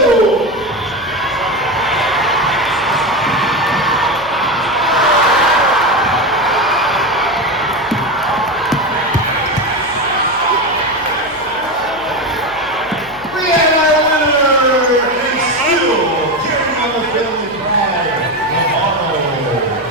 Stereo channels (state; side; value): noise; left; hum, 22 dB below the sound